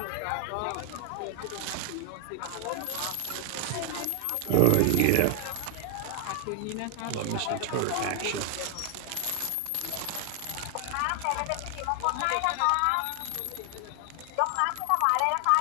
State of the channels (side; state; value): both; different; correlation 0.00